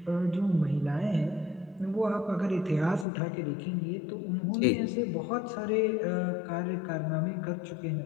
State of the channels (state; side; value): drops out; right; at 3.1 s